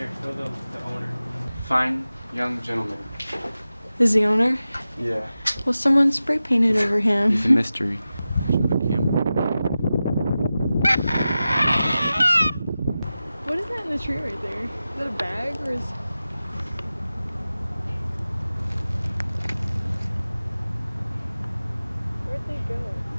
show the owner. Fine young gentleman. Is the owner? Yeah. Well, someone spray painted over him. He's a mystery. Show the camera. tree right there. Is that a bag or is... Where'd they go?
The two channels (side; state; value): both; inverted; correlation -0.94